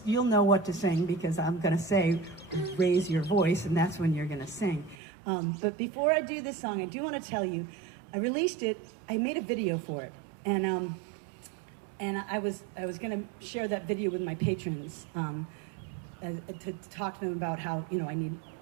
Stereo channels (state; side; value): drops out; left; at 5.0 s